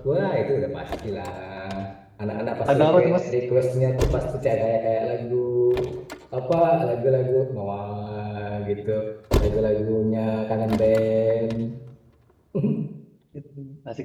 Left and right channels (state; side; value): identical; both; correlation 1.00